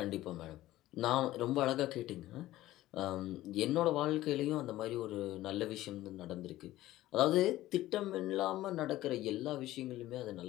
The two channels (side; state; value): right; quieter; 15.6 dB